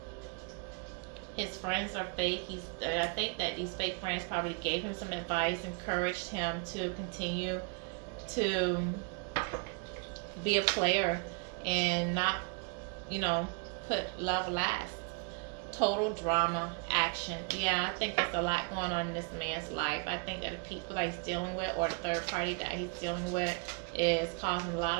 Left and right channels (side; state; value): left; quieter; 35.0 dB